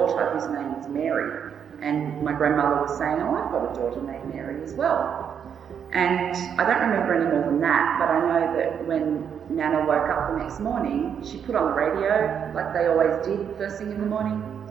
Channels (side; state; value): left; quieter; 7.9 dB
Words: whose name was Mary. And my grandmother was saying, oh, I've got a daughter named Mary as well. And I don't remember any more than that, but I know that when Nana woke up the next morning, she put on the radio, like they always did first thing in the morning,